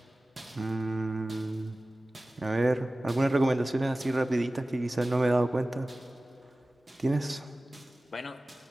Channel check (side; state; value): both; normal; correlation 0.97